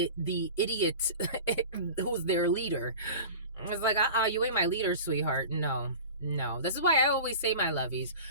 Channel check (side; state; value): both; inverted; correlation -0.36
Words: who's their leader. It's like, you ain't my leader, sweetheart. No. This is why I always say, my lovies,